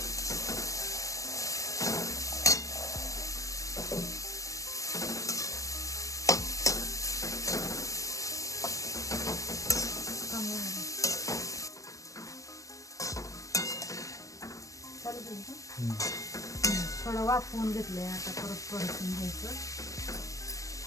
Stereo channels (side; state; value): right; late; 0.16 ms